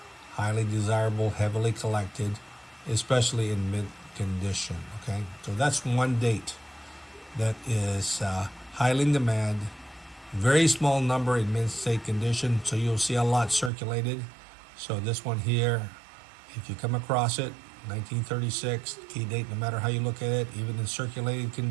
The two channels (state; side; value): drops out; left; at 13.7 s